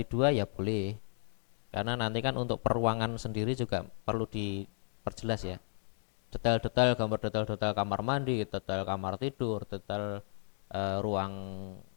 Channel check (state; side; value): silent; right; 55 dB below the other